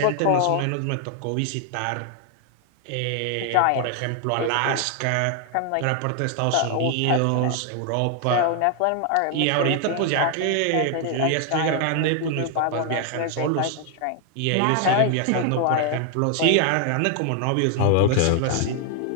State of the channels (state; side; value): different; both; correlation 0.00